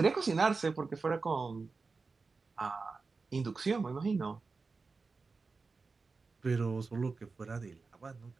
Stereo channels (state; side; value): quieter; left; 4.3 dB